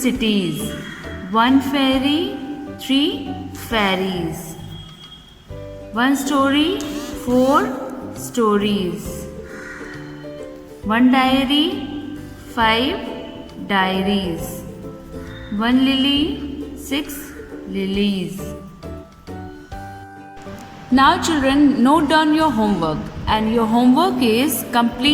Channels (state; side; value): identical; both; correlation 1.00